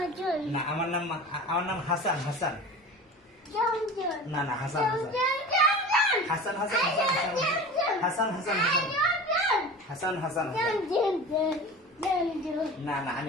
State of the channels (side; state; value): both; normal; correlation 0.35